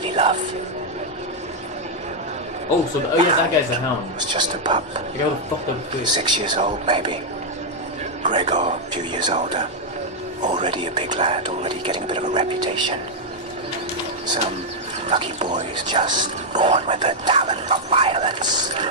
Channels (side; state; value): both; normal; correlation -0.02